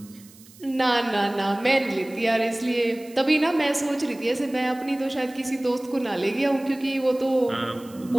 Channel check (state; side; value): noise; right; hiss, 23 dB below the sound